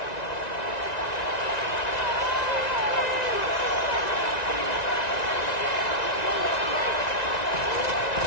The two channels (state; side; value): late; right; 1.9 ms